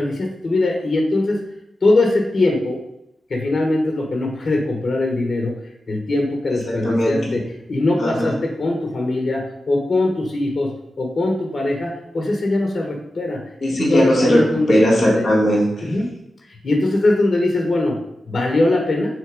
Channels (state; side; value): normal; both; correlation 0.92